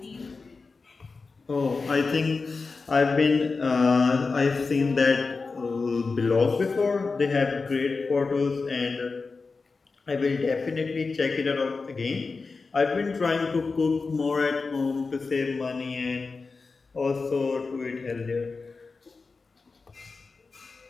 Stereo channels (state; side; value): quieter; right; 4.3 dB